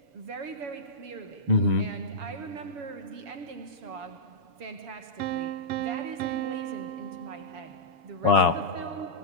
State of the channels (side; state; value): left; late; 7.1 ms